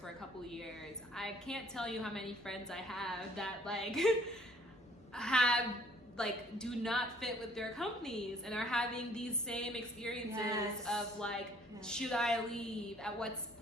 a couple of years, I can't tell you how many friends I have that like do not fit with their companies and are having these same experiences of like, should I leave? At what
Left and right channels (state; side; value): normal; both; correlation 0.58